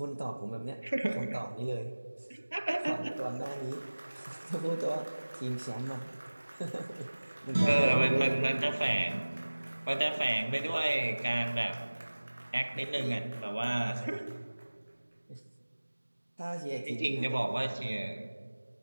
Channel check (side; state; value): both; inverted; correlation -1.00